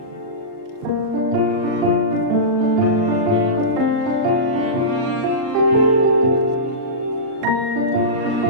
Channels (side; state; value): left; late; 38 ms